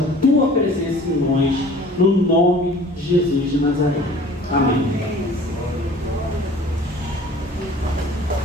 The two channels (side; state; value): both; normal; correlation 0.47